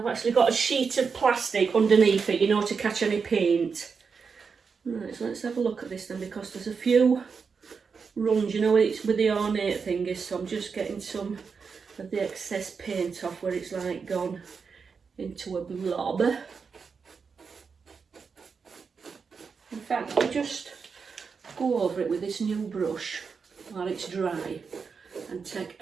actually got a sheet of plastic underneath it, you know, to catch any paint. Right, so let's have a look at this then, because there's a few runs, you know, it's with the ornate thingies, so I'm just getting some of the excess paint off where it's like gone into a blob. In fact, I'll just go over it with this new brush while it's dry. and take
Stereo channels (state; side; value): quieter; left; 5.5 dB